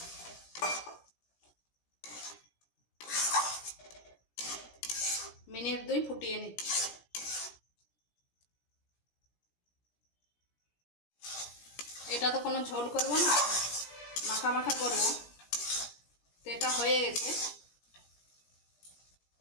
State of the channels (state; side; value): late; right; 17 ms